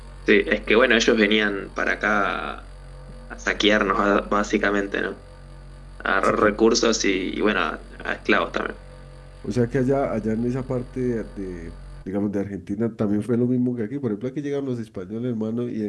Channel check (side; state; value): both; identical; correlation 1.00